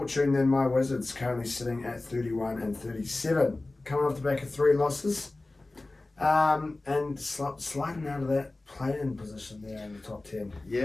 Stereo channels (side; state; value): right; quieter; 3.0 dB